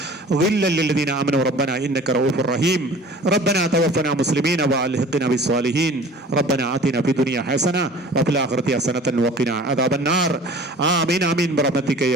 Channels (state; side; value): normal; both; correlation 0.44